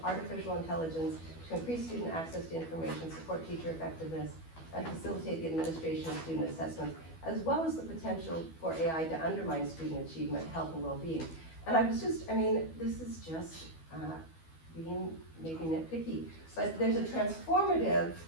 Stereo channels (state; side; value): late; right; 12 ms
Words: artificial intelligence to increase student access to information, support teacher effectiveness, and facilitate the administration of student assessments, as well as the potential for AI to undermine student achievement, health, and well-being. And I was just, I mean, this is just, being maybe nitpicky, but there's a transformative